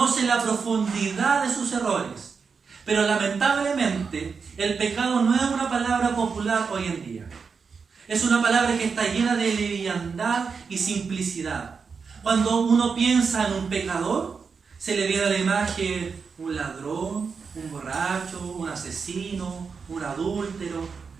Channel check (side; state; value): left; quieter; 5.4 dB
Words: la profundidad de sus errores. Pero lamentablemente, el pecado no es una palabra popular hoy en día. Es una palabra que está llena de liviandad y simplicidad. Cuando uno piensa en un pecador, se le viene a la imagen un ladrón, un borracho, un asesino, un adúltero.